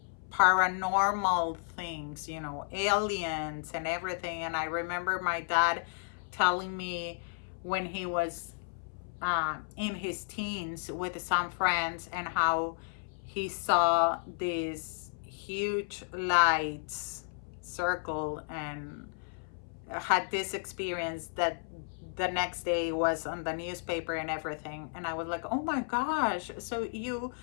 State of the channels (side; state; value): right; silent; 56 dB below the other